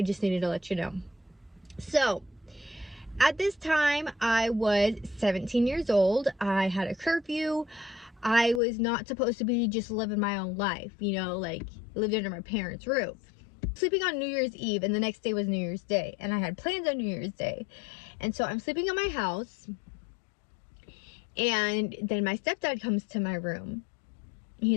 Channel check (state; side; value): drops out; right; at 8.6 s